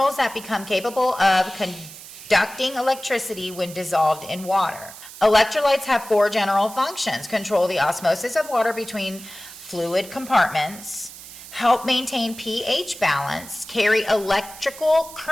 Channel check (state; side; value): noise; right; hiss, 15 dB below the sound